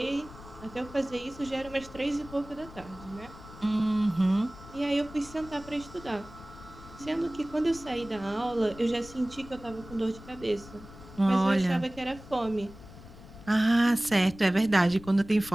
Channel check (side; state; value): left; noise; rumble, 17 dB below the sound